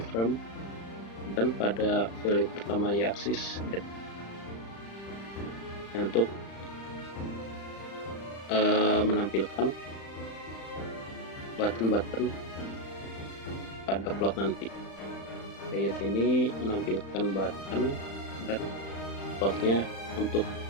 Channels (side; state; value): right; late; 35 ms